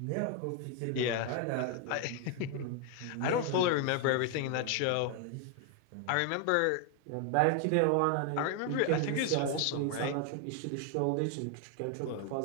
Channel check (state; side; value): different; both; correlation 0.01